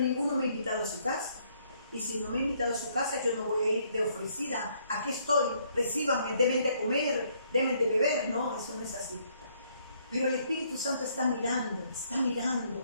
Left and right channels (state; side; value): inverted; both; correlation -0.68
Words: me ha invitado a su casa. Y si no me ha invitado a su casa, yo no voy a ir de ofrecida. Aquí estoy, recíbanme, deben de comer, deben de beber. No, eso no es así. Pero el Espíritu Santo está mirando.